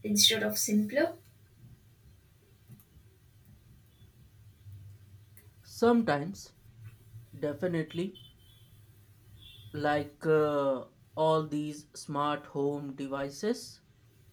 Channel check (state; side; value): identical; both; correlation 1.00